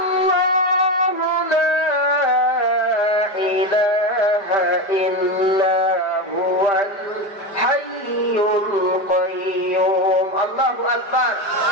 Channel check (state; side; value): late; right; 5.0 ms